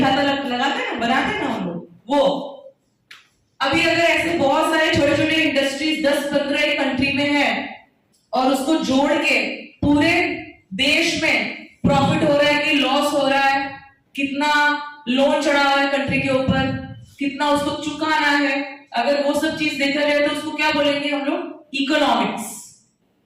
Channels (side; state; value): both; identical; correlation 1.00